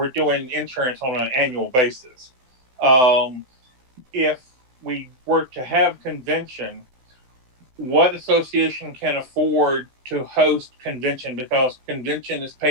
doing insurance on an annual basis. If we were to have convention, what association can afford to host convention? Because convention is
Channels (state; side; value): late; left; 16 ms